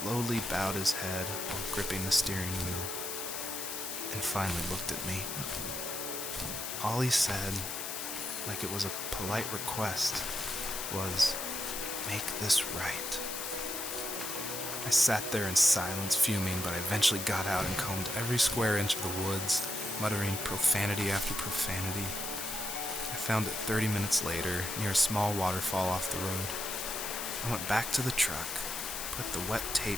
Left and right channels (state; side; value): noise; left; hiss, 5 dB below the sound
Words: bowed his head while gripping the steering wheel, and finally looked at me. All he said, like it was a polite request, was, "Make this right." I sat there in silence, fuming, but I eventually got out and combed every square inch of the woods, muttering profanity after profanity. I found it 30 minutes later, near a small waterfall off the road. I went back to the truck, put the wet tape